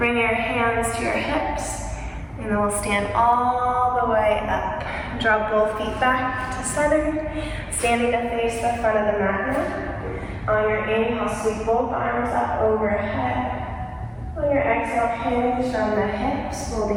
your hands to your hips, and then we'll stand all the way up. Draw both feet back to center, standing to face the front of the mat now. On your inhale, sweep both arms up overhead. On your exhale, hinge from the hips,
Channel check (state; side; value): identical; both; correlation 1.00